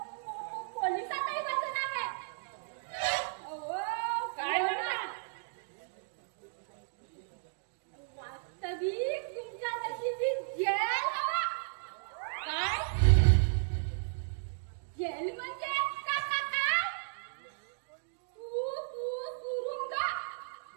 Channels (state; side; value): silent; left; digital silence